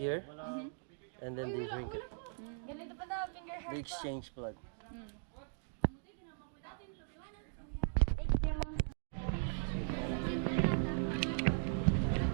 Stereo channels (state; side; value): silent; left; digital silence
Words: and then they drink it. They exchange blood.